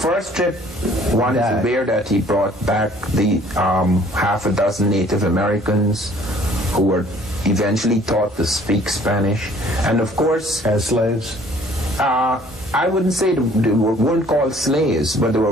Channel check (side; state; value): both; normal; correlation 0.56